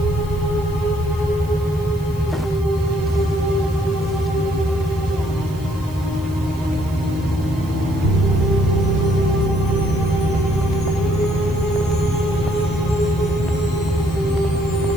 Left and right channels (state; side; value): noise; left; hiss, 23 dB below the sound